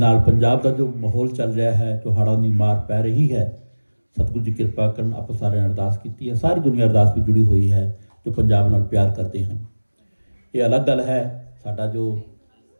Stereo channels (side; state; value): both; inverted; correlation -1.00